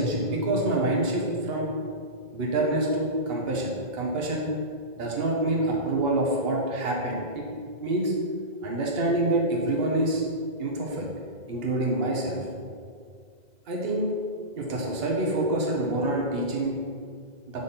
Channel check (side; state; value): left; late; 2.0 ms